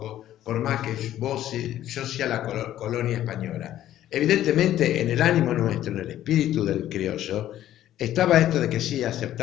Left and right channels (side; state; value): right; quieter; 12.6 dB